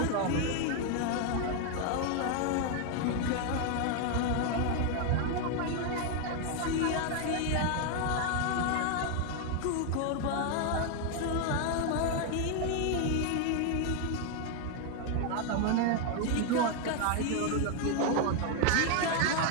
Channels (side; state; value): both; different; correlation 0.01